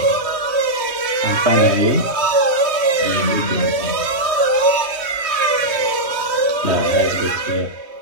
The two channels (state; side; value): late; left; 3.1 ms